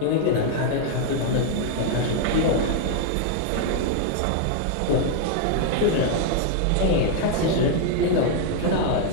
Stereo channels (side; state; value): both; different; correlation 0.00